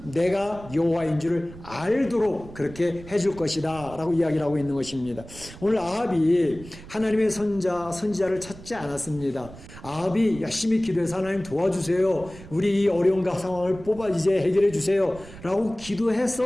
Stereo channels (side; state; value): right; noise; rumble, 17 dB below the sound